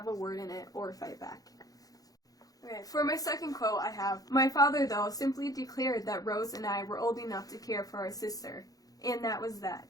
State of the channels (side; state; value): right; late; 0.18 ms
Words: a word in it or fight back. Okay, for my second quote I have, "My father, though, simply declared that Rose and I were old enough to care for our sister, and that was that."